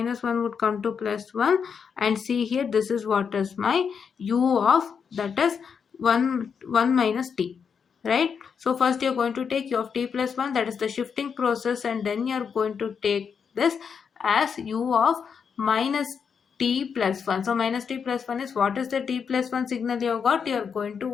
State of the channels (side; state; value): right; quieter; 6.5 dB